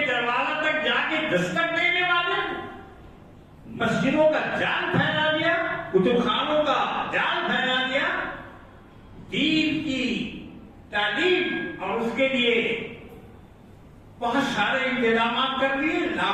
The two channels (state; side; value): identical; both; correlation 1.00